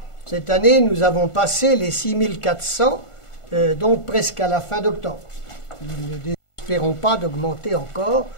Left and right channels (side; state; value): right; late; 1.4 ms